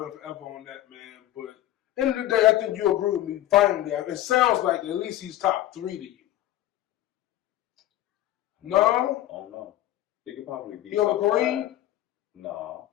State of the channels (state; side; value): quieter; right; 14.0 dB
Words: and forever on that, man. But end of the day, I think you agree with me. Finally, it sounds like at least he's top 3 to you. No? Oh no. He could probably be. He over Kareem? No.